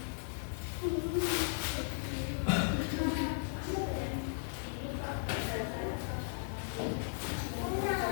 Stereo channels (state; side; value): silent; right; digital silence